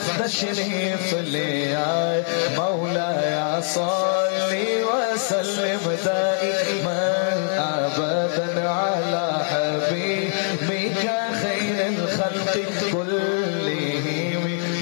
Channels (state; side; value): silent; right; digital silence